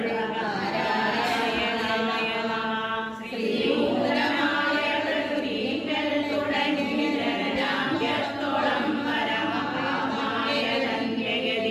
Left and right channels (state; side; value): identical; both; correlation 1.00